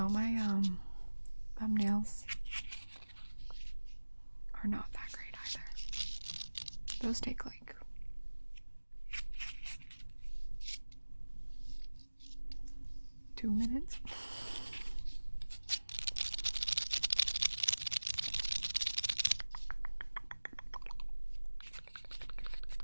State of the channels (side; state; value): both; inverted; correlation -1.00